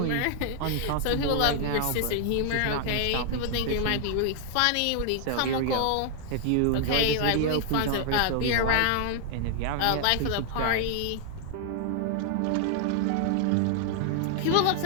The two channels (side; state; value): both; different; correlation 0.00